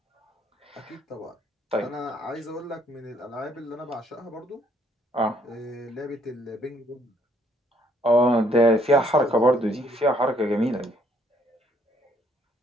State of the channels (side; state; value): both; normal; correlation 0.66